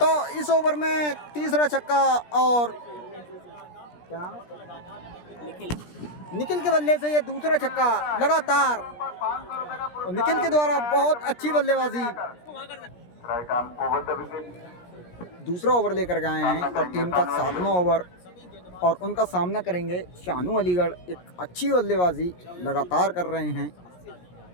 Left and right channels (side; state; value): right; late; 17 ms